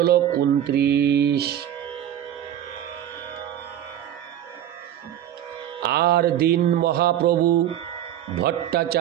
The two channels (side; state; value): left; quieter; 11.1 dB